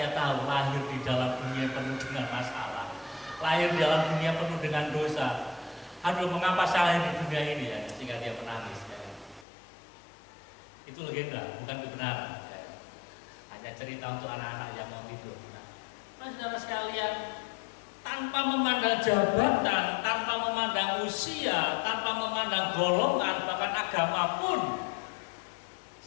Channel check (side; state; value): right; drops out; at 9.5 s